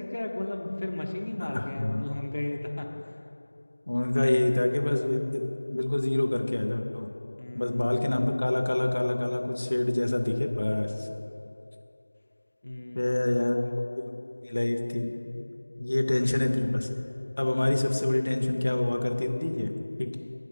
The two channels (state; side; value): inverted; both; correlation -1.00